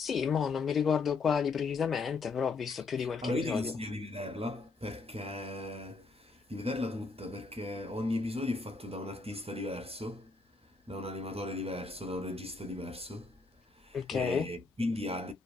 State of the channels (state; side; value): quieter; right; 4.2 dB